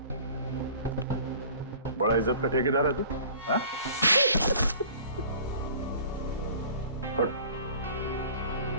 बड़ा इज्जत का ठेकेदार है तू, हाँ? हट।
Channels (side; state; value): both; inverted; correlation -0.47